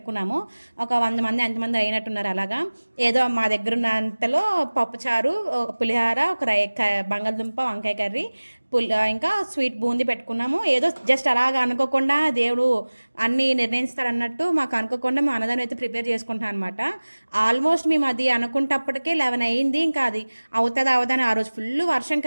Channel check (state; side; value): inverted; both; correlation -1.00